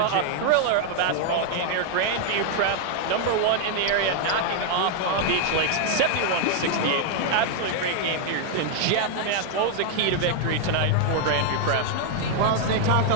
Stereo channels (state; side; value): different; both; correlation 0.00